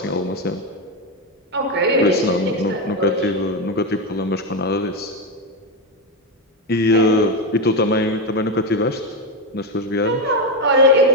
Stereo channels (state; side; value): normal; both; correlation 0.09